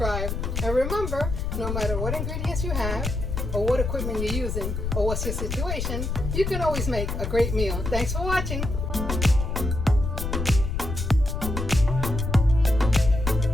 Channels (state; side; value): noise; left; rumble, 3 dB below the sound